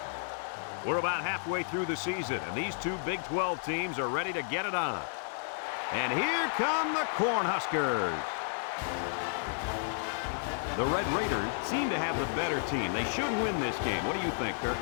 We're about halfway through the season, and these two Big 12 teams are ready to get it on. And here come the Cornhuskers. The Red Raiders seem to have the better team. They should win this game. What do you think, Kirk?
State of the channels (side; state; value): right; silent; digital silence